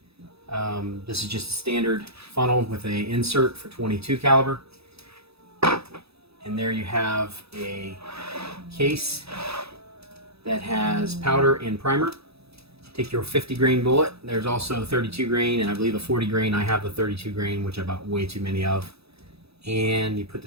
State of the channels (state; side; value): late; left; 0.78 ms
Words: This is just a standard funnel with a insert for 22 caliber. And there you have a case that has powder and primer. Take your 50 grain bullet. There's also 32 grain and I believe a 40 grain. I have the 32 grain, which I bought way too many of. And you put